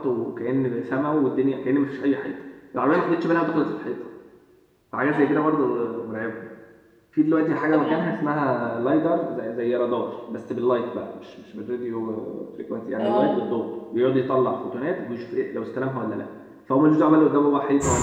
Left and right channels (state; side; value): identical; both; correlation 1.00